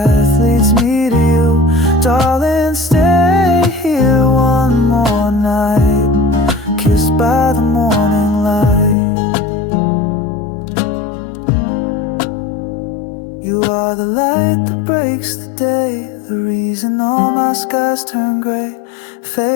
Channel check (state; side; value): drops out; right; at 9.0 s